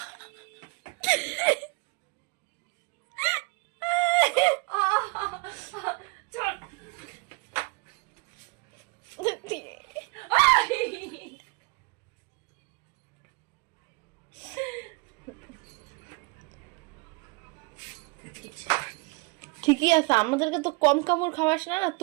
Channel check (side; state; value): left; quieter; 28.8 dB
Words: ঠিকই আছে, আমাদেরকে তো কম কাপড় খাওয়াস না, না